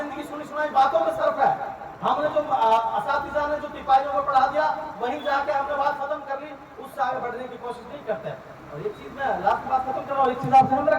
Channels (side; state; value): both; identical; correlation 1.00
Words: सुनी सुनाई बातों पे सर्फ है। हमने जो असातिज़ा ने जो तिपाहियों को पढ़ा दिया, वहीं जाके हमने बात खत्म कर ली, उससे आगे बढ़ने की कोशिश नहीं करते। और एक चीज में लास्ट बात खत्म कर रहा हूँ, एक चीज आप ध्यान